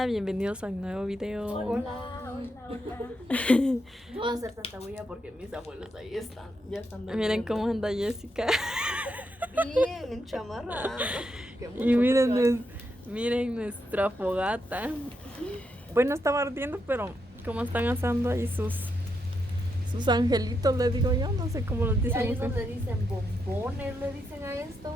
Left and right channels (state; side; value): normal; both; correlation 0.82